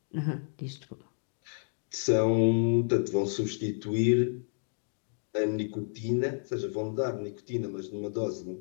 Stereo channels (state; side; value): silent; right; digital silence